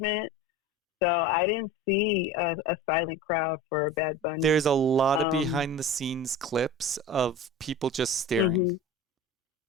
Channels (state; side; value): normal; both; correlation 0.34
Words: So I didn't see a silent crowd for Bad Bunny. There's a lot of behind the scenes clips of people just staring.